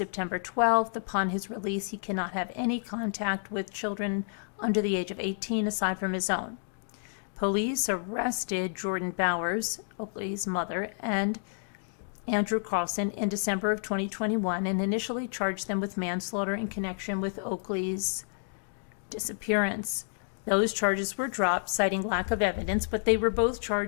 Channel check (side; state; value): right; silent; digital silence